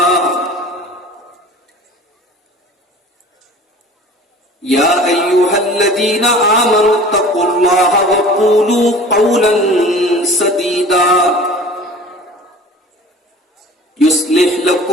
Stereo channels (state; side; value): normal; both; correlation 0.43